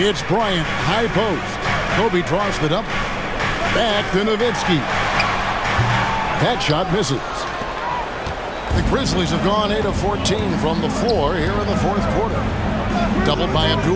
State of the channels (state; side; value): identical; both; correlation 1.00